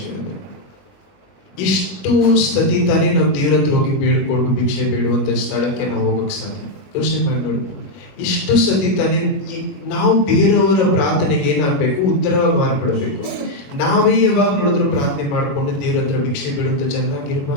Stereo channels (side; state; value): right; late; 21 ms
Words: ಇಷ್ಟು ಸತಿ ತಾನೇ ನಾವು ದೇವರ ಹತ್ರ ಹೋಗಿ ಬೇಡ್ಕೊಂಡು ಭಿಕ್ಷೆ ಬೇಡುವಂತ ಸ್ಥಳಕ್ಕೆ ನಾವು ಹೋಗಕ್ಕೆ ಸಾಧ್ಯ. ಯೋಚನೆ ಮಾಡಿ ನೋಡಿ, ಇಷ್ಟು ಸತಿ ತಾನೇ ನಾವು ಬೇರೆಯವರ ಪ್ರಾರ್ಥನೆಗೆ ಏನಾಗಬೇಕು, ಉತ್ತರವಾಗಿ ಮಾರ್ಪಡಬೇಕು. ನಾವೇ ಯಾವಾಗ ನೋಡಿದ್ರು ಪ್ರಾರ್ಥನೆ ಮಾಡಿಕೊಂಡು ದೇವರ ಹತ್ರ ಭಿಕ್ಷೆ ಬೇಡುವಂತ